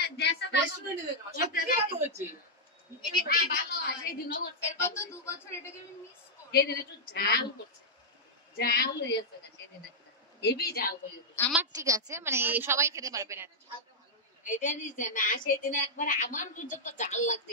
আমার ঠিক আছে, মানে সবাই খেতে পারবে না। সেদিন একবার আমার যত জাল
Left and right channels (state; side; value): normal; both; correlation -0.06